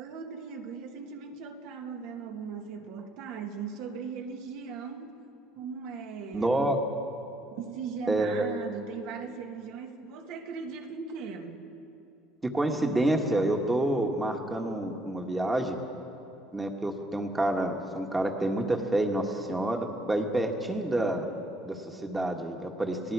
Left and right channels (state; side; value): normal; both; correlation 0.71